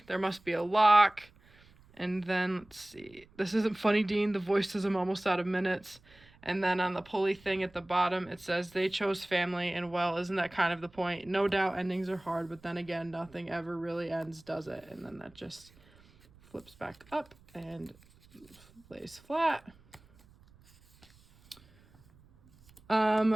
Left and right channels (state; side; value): noise; right; rumble, 27 dB below the sound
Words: there must be a lock." And then, let's see. "This isn't funny, Dean. The voice says I'm almost out of minutes." And then on the pulley thing at the bottom, it says, "They chose family, and well, isn't that kind of the point? No doubt endings are hard, but then again, nothing ever really ends, does it?" And then that just flips back up and lays flat.